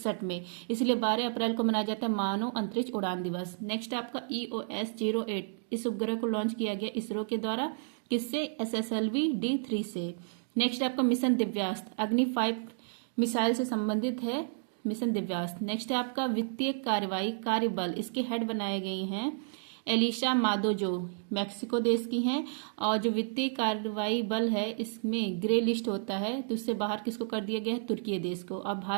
में, इसलिए 12 अप्रैल को मनाया जाता है मानव अंतरिक्ष उड़ान दिवस। नेक्स्ट आपका, EOS-08, इस उपग्रह को लॉन्च किया गया इसरो के द्वारा। किससे? SSLV-D3 से। नेक्स्ट आपका, मिशन दिव्यास्त्र, अग्नि 5 मिसाइल से संबंधित है मिशन दिव्यास्त्र। नेक्स्ट है आपका, वित्तीय कार्रवाई कार्यबल, इसके हेड बनाए गए हैं एलिशा मादो, जो मैक्सिको देश की हैं। और जो वित्तीय कार्रवाई बल है, इसमें ग्रे लिस्ट होता है, तो उससे बाहर किसको कर दिया गया है? तुर्की देश को। अब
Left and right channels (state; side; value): silent; left; digital silence